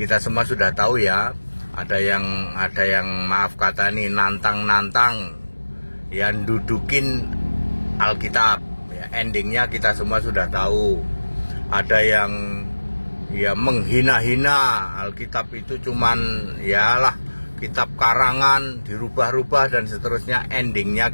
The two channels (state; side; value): inverted; both; correlation -1.00